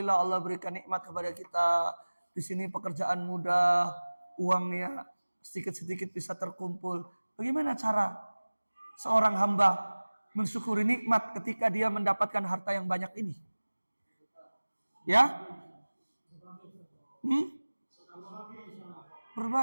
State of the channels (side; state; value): both; inverted; correlation -1.00